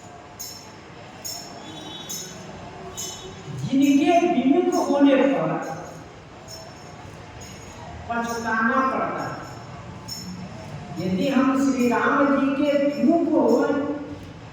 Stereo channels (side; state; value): both; identical; correlation 1.00